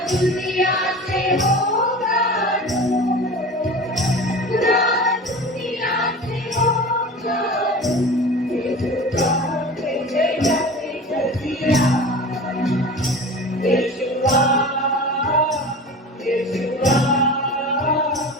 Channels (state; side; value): normal; both; correlation 0.34